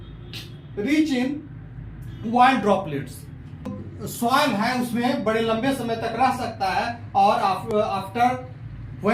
rich in wild droplets. Soil है उसमें बड़े लंबे समय तक रह सकता है और after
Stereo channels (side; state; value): both; identical; correlation 1.00